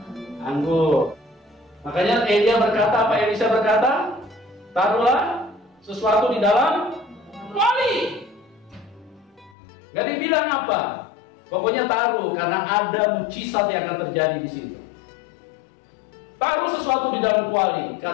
anggur. Makanya Elia berkata, apa Elisa berkata? Taruhlah sesuatu di dalam kuali. Gak dibilang apa. Pokoknya taruh, karena ada mukjizat yang akan terjadi di situ. Taruh sesuatu di dalam kuali,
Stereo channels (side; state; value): right; drops out; at 9.6 s